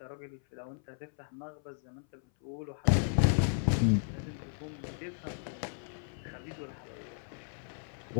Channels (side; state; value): right; silent; 55 dB below the other